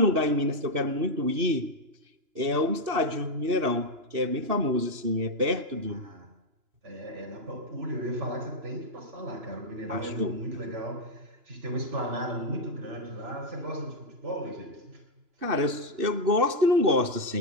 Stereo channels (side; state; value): left; late; 2.9 ms